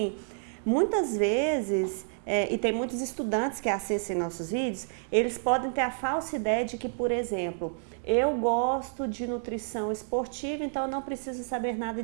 muitas vezes, e tem muitos estudantes que assistem nossos vídeos, eles podem ter a falsa ideia de que, por exemplo, eu gosto de nutrição esportiva, então eu não preciso saber nada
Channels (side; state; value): left; silent; digital silence